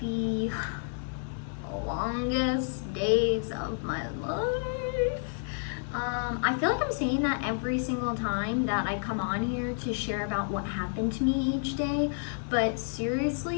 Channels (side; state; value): right; silent; digital silence